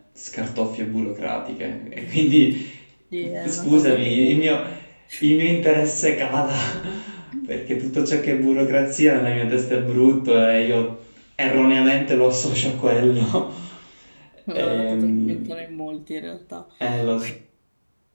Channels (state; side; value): inverted; both; correlation -1.00